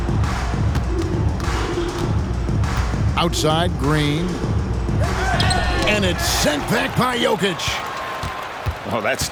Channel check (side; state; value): both; identical; correlation 1.00